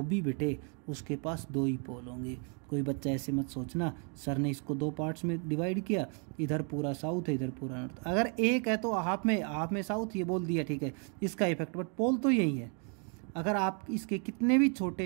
भी बेटे उसके पास दो ही पोल होंगे। कोई बच्चा ऐसे मत सोचना सर ने इसको दो पार्ट्स में डिवाइड किया, इधर पूरा साउथ है इधर पूरा नॉर्थ। अगर एक है तो हाफ में साउथ ये बोल दिया, ठीक है, इसका इफेक्ट, बट पोल तो यही है। अगर आप इसके कितने भी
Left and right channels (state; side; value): quieter; left; 39.3 dB